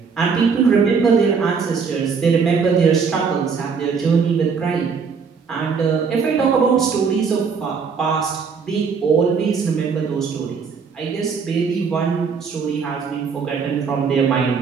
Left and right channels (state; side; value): quieter; left; 5.7 dB